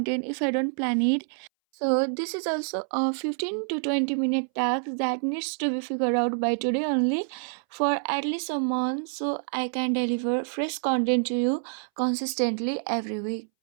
if I don't plan it. So this is also a 15 to 20 minute task that needs to be figured out by today only for at least a month so I can deliver fresh content to you consistently every week.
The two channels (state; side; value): silent; left; 60 dB below the other